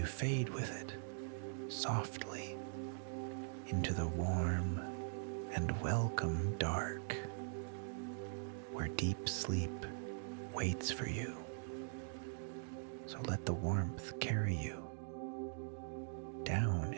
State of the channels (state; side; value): silent; left; digital silence